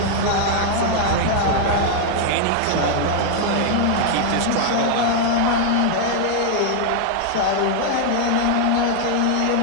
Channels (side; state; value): both; different; correlation 0.00